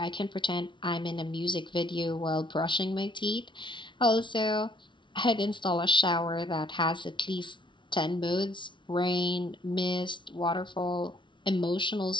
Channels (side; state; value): right; late; 0.24 ms